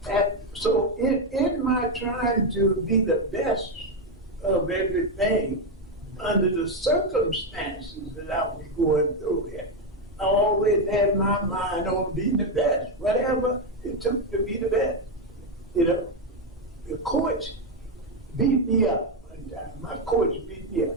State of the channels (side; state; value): right; noise; hum, 27 dB below the sound